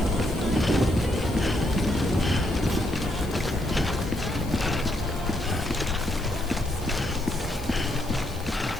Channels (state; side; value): noise; left; hiss, 20 dB below the sound